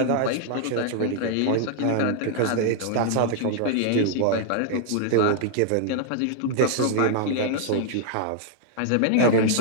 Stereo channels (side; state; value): both; different; correlation -0.01